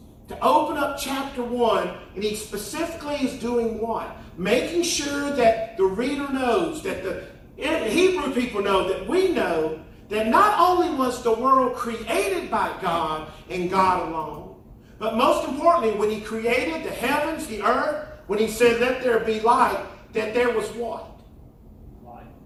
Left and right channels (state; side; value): identical; both; correlation 1.00